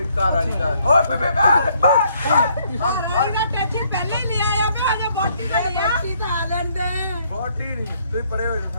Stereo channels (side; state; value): both; inverted; correlation -0.68